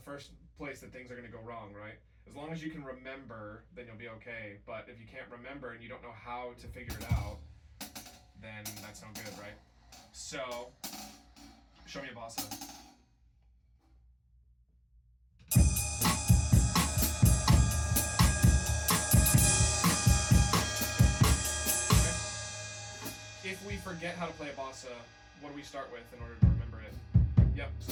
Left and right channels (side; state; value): both; identical; correlation 1.00